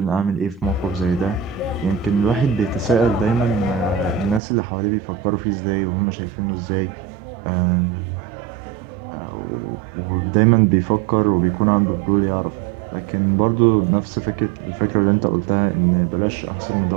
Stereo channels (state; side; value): drops out; left; at 4.4 s